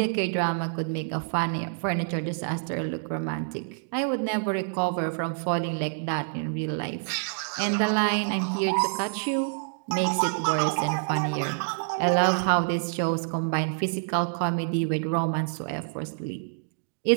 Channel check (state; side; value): silent; left; digital silence